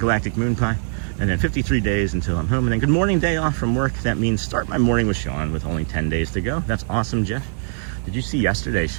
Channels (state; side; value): silent; left; digital silence